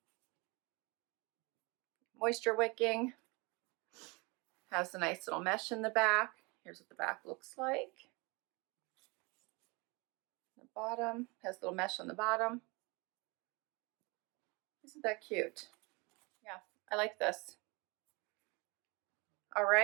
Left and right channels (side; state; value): left; quieter; 27.3 dB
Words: Moisture wicking. Has a nice little mesh in the back. Here's what the back looks like. The bottom has a little mesh on the bottom. Isn't that cute? Yeah, I like this. All